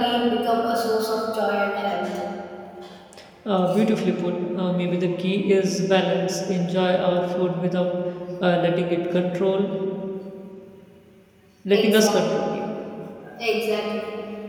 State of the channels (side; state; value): both; identical; correlation 1.00